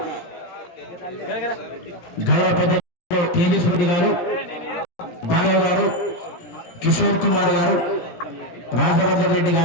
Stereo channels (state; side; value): late; right; 17 ms